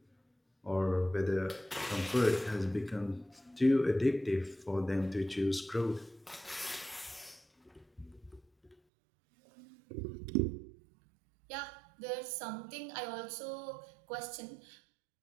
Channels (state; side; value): drops out; left; at 8.8 s